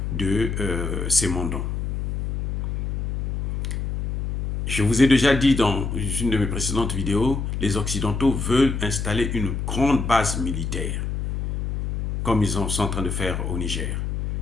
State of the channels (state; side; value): noise; left; hum, 2 dB below the sound